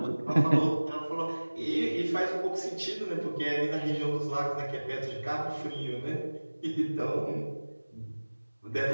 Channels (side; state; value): both; inverted; correlation -1.00